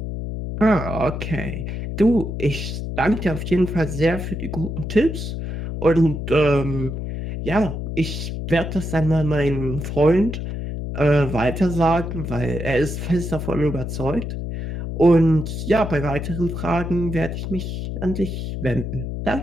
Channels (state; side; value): noise; left; hum, 5 dB below the sound